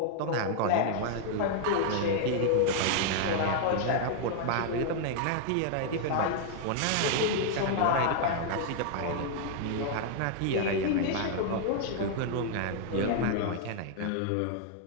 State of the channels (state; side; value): different; both; correlation 0.00